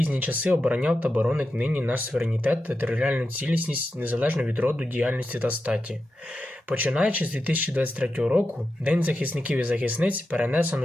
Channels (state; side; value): normal; both; correlation 0.90